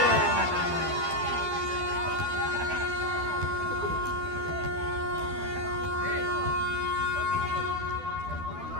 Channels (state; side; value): late; left; 12 ms